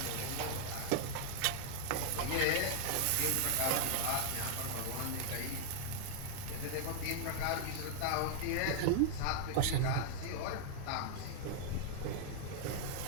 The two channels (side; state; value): both; different; correlation -0.01